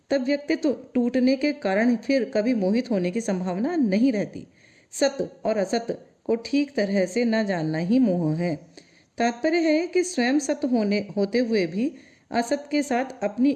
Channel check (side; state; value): both; identical; correlation 1.00